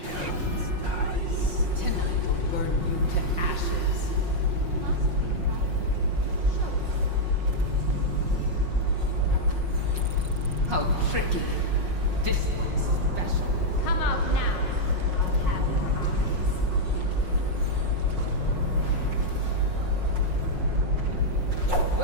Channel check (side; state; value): left; late; 5.5 ms